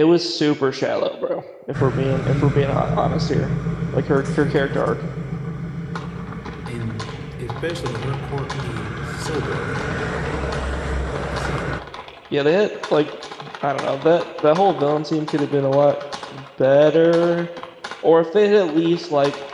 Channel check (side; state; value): both; identical; correlation 1.00